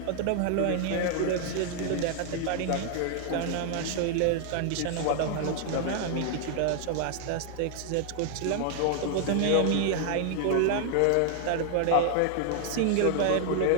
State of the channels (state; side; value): different; both; correlation 0.00